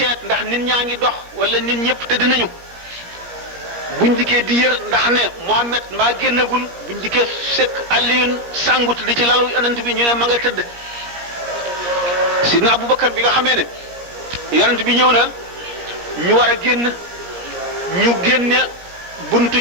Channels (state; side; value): late; left; 17 ms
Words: ndax nit ñaa ngi dox wala nit ñëpp tëdd nañu buñ dikkee di yër ndax ne Muhammad mbaa génnagul buñ dikkee fekk Aliyun sàngut di ci lalu yonent bi ñu ne ma nga tëdd Sidna Aboubacar bi nga xamee ne yonent bi ñëw na ñu war a génn ñu génne buntu